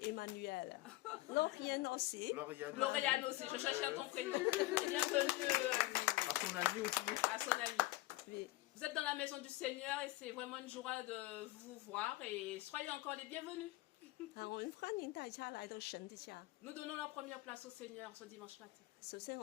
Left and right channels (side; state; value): right; quieter; 19.0 dB